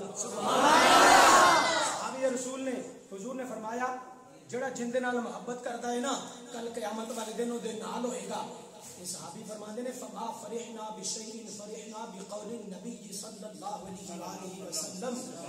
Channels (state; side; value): identical; both; correlation 1.00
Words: صحابی رسول نے حضور نے فرمایا جڑا جن دے نال محبت کرتا ہے نا کل قیامت والے دنوں دے نال ہوئے گا صحابی فرماتے ہیں فما فرحنا بشیء فرحنا بقول النبی صلی اللہ علیہ وآلہ وسلم